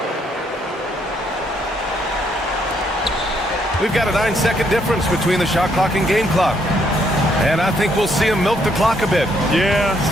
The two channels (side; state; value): both; normal; correlation 0.72